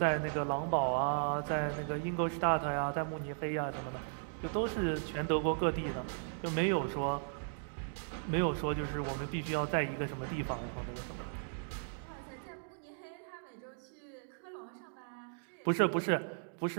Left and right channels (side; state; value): left; silent; digital silence